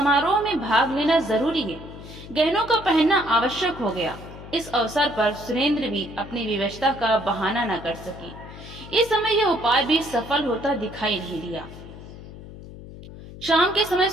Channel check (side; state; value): left; noise; hum, 15 dB below the sound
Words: में भाग लेना जरूरी है। गहनों का पहनना आवश्यक हो गया। इस अवसर पर सुरेंद्र भी अपनी विवशता का बहाना न कर सकी। इस समय यह उपाय भी सफल होता दिखाई नहीं दिया। शाम के समय